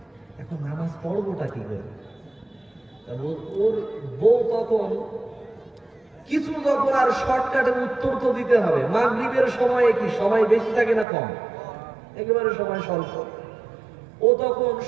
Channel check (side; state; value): left; drops out; at 11.1 s